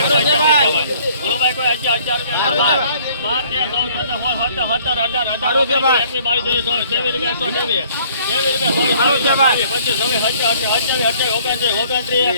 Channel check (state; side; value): inverted; both; correlation -0.57